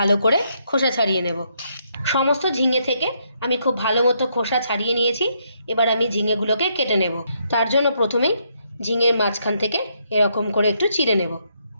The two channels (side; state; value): both; inverted; correlation -0.75